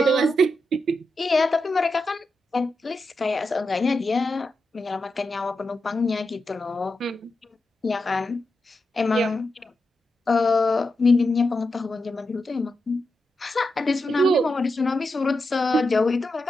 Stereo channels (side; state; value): both; normal; correlation 0.88